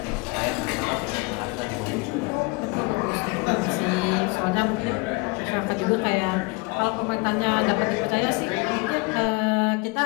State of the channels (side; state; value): right; quieter; 27.4 dB